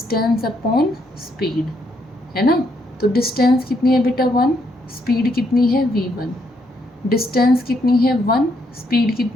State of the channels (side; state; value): both; normal; correlation 0.74